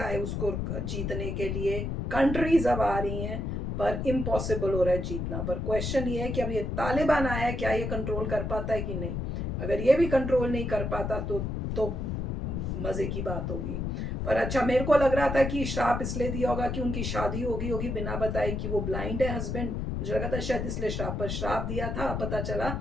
उसको जीतने के लिए, कंट्रीज अब आ रही हैं, पर इम्पॉसिबल हो रहा है जीतना। पर क्वेश्चन ये है कि अब ये तालिबान आया है, क्या ये कंट्रोल कर पाता है कि नहीं। अगर ये भी कंट्रोल नहीं कर पाता तो मजे की बात होगी। पर अच्छा, मेरे को लग रहा था कि श्राप इसलिए दिया होगा कि उनकी शादी होगी बिना बताए कि वो ब्लाइंड है हस्बैंड। मुझे लगा था शायद इसलिए श्राप दिया था। पता चला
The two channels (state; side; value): noise; left; rumble, 2 dB below the sound